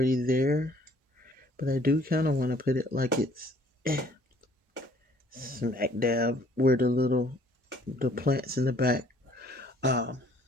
there. But I do kind of want to put it like it's smack dab where the plants in the back um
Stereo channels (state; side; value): normal; both; correlation 0.59